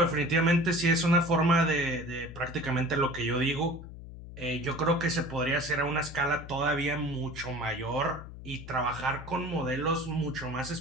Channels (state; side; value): noise; left; hum, 13 dB below the sound